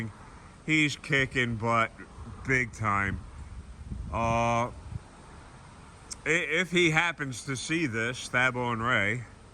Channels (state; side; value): identical; both; correlation 1.00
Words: He's kicking butt big time. If he happens to see this, Thabo and Ray,